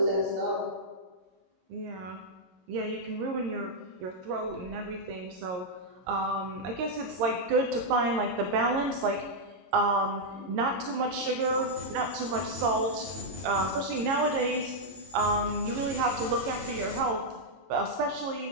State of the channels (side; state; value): left; late; 22 ms